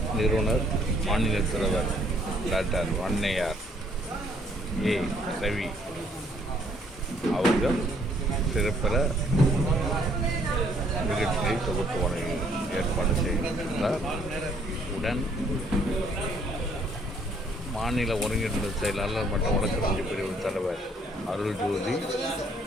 நிறுவனர் மாநில தலைவர் டாக்டர் வன்னையார் A. ரவி அவர்கள் சிறப்பிற நிகழ்ச்சியை தொகுத்து வழங்கி ஏற்பாடு செய்திருந்தார். உடன் மாநில ஒருங்கிணைந்த செயலாளர் மற்றும் வழக்கறிஞர் பிரிவு தலைவர் அருள்ஜோதி,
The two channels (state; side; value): normal; both; correlation 0.65